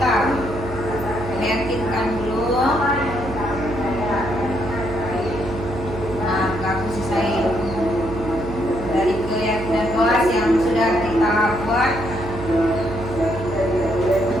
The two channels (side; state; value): right; noise; hum, 9 dB below the sound